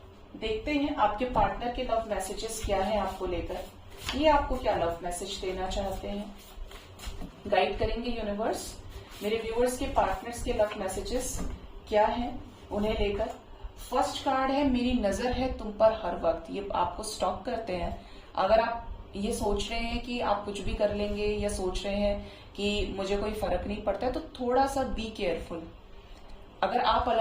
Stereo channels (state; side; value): identical; both; correlation 1.00